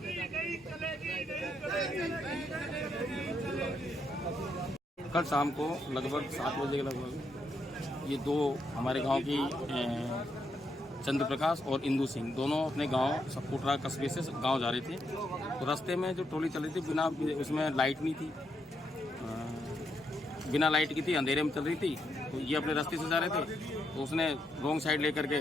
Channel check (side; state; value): both; normal; correlation 0.79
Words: कल शाम को लगभग 7 बजे के लगभग ये दो हमारे गांव की चंद्र प्रकाश और इंदू सिंह दोनों अपने गांव सपोटरा कस्बे से गांव जा रहे थे। तो रास्ते में जो ट्रॉली चल रही थी बिना उसमें लाइट नहीं थी, बिना लाइट की थी, अंधेरे में चल रही थी। तो ये अपने रास्ते से जा रहे थे, तो उसने रॉन्ग साइड लेकर के